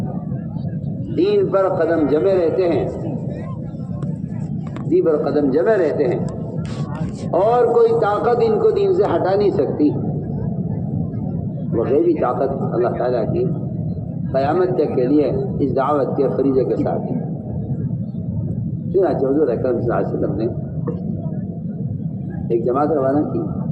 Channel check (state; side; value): identical; both; correlation 1.00